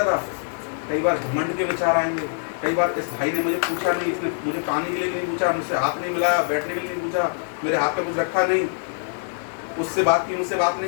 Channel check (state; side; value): silent; right; 63 dB below the other